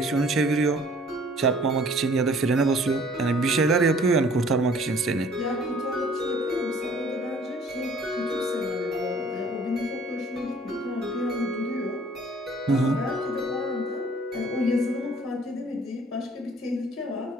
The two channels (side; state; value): both; normal; correlation 0.55